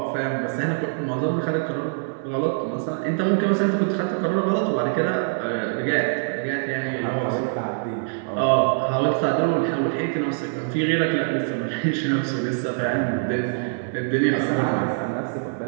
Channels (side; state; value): left; silent; digital silence